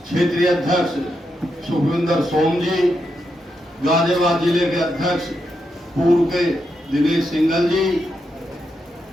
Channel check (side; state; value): both; normal; correlation 0.84